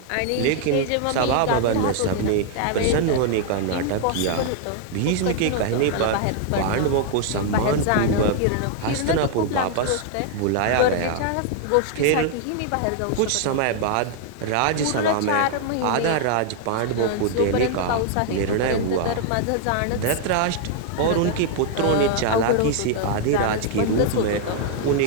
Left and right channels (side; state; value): both; different; correlation 0.00